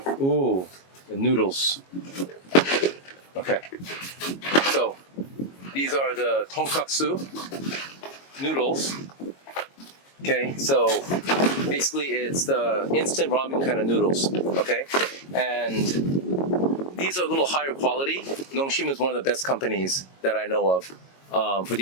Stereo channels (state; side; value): late; right; 22 ms